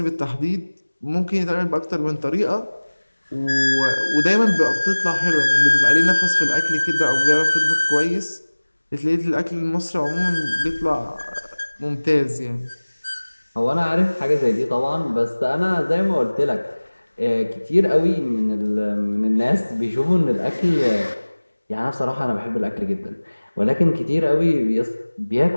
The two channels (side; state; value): both; inverted; correlation -1.00